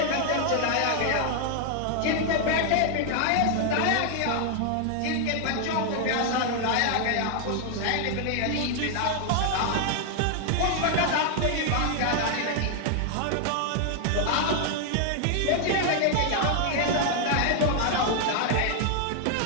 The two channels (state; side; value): different; both; correlation 0.00